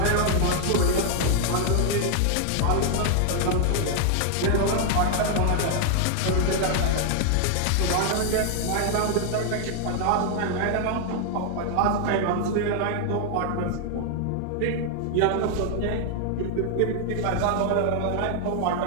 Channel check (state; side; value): different; both; correlation 0.00